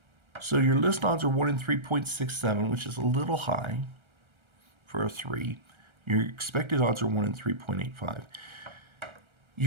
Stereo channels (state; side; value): late; left; 1.3 ms